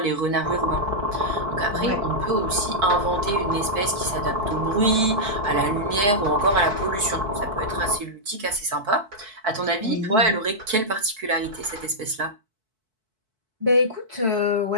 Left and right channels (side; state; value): left; late; 4.6 ms